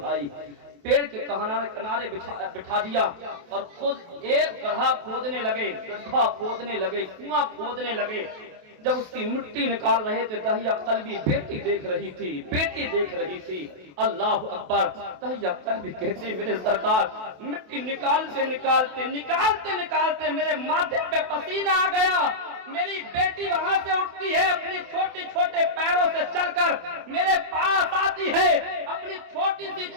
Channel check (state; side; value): late; left; 28 ms